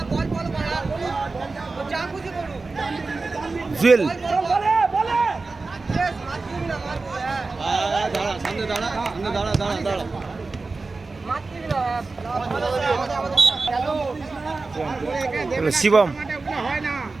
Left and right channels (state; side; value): quieter; left; 3.8 dB